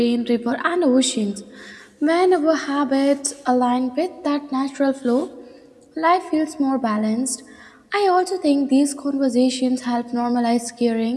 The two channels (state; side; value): identical; both; correlation 1.00